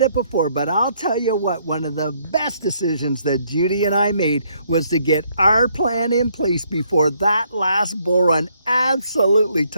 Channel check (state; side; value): inverted; both; correlation -0.69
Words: it before, but I'll tell you what, one of the best decisions that Judy and I made was to get our plan in place before that last bull run absolutely